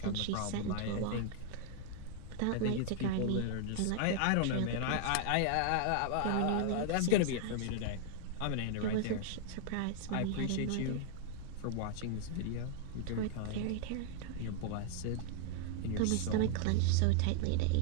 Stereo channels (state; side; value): different; both; correlation 0.00